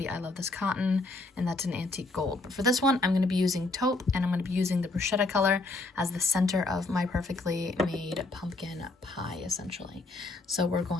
I Love This Cotton, and that's an antique gold. But for this one, I'm going to be using taupe, and I'm going to be using the Bruschetta color as the center of my perfectly made pumpkin pie, essentially. So we're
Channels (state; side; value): quieter; right; 3.2 dB